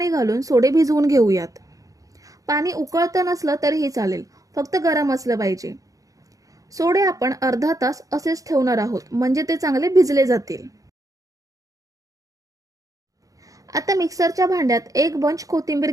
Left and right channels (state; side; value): late; left; 0.17 ms